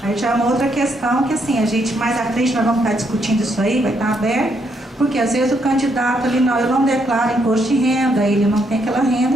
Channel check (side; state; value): both; normal; correlation 0.75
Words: Aí já é uma outra questão que, assim, a gente mais à frente nós vamos estar discutindo isso aí, vai estar aberto, porque às vezes o candidato ali, não, eu não declaro imposto de renda, ele não tem aquela